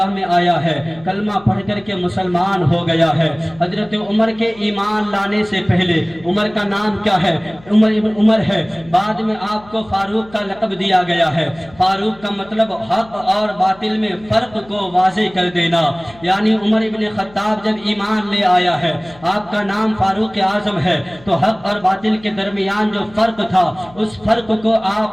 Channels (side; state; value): left; noise; hum, 24 dB below the sound